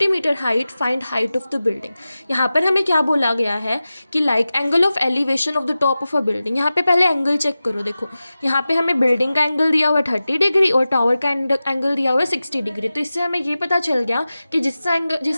metre height, find height of the building. यहाँ पर हमें क्या बोला गया है कि like angle of elevation of the top of a building. यहाँ पे पहले एंगल चेक करो। देखो यहाँ पे हमें बिल्डिंग का एंगल दिया हुआ है 30 डिग्री और टावर का एंगल दिया हुआ है 60 डिग्री। तो इससे हमें ये पता चल गया कि जिसका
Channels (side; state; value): both; inverted; correlation -0.95